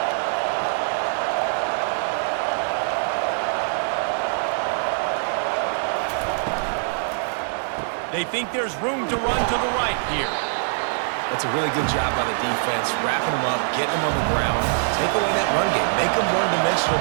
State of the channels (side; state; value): left; silent; digital silence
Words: They think there's room to run to the right here. That's a really good job by the defense, wrapping them up, getting them on the ground, take away that run game, make them one-dimensional,